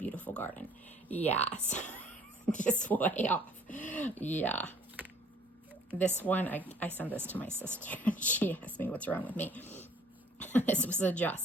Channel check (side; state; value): both; normal; correlation 0.56